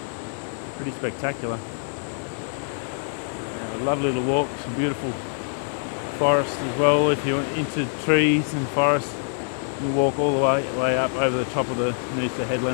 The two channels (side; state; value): right; silent; digital silence